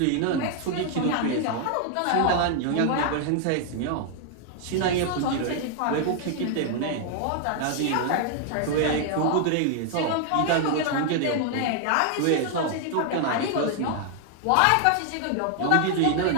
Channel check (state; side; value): different; both; correlation 0.00